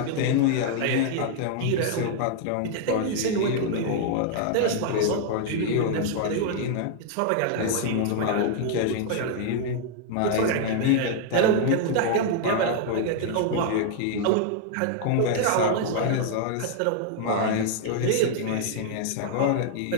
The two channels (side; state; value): both; different; correlation 0.00